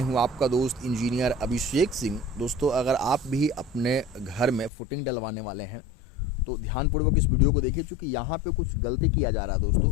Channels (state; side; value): drops out; right; at 4.7 s